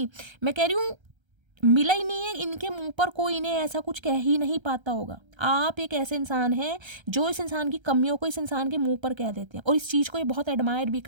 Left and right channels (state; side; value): late; left; 1.3 ms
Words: मैं कह रही हूँ मिला ही नहीं है इनके मुंह पर, कोई इन्हें ऐसा कुछ कह ही नहीं पाता होगा। आप एक ऐसे इंसान हैं जो इस इंसान की कमियों को इस इंसान के मुंह पर कह देते हैं, और इस चीज़ को ये बहुत एडमायर भी